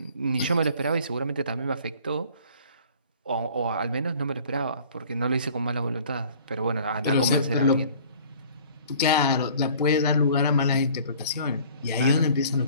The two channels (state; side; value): inverted; both; correlation -0.50